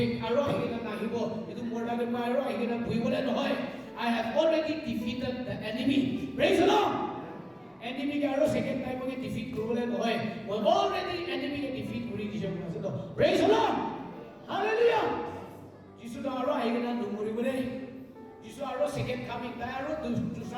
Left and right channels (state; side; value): identical; both; correlation 1.00